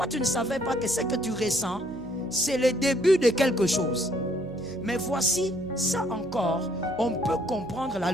tu ne savais pas que ce que tu ressens, c'est le début de quelque chose. Mais voici, ça encore, on peut comprendre la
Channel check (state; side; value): noise; right; hum, 18 dB below the sound